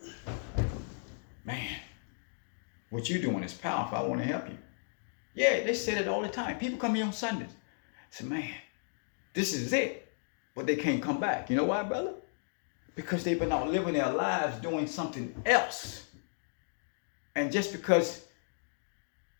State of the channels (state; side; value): silent; right; digital silence